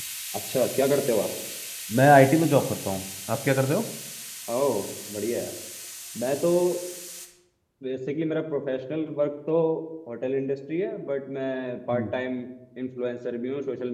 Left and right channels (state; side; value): identical; both; correlation 1.00